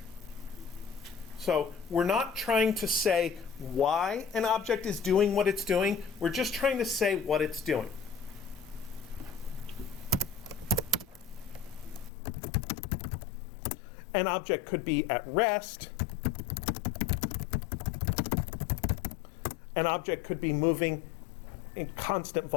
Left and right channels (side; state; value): right; drops out; at 12.1 s